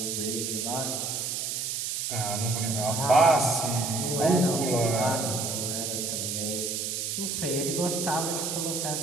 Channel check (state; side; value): noise; right; hiss, 2 dB below the sound